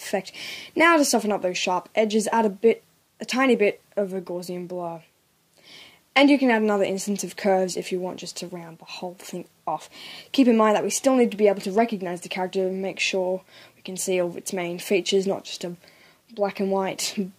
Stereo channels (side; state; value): both; identical; correlation 1.00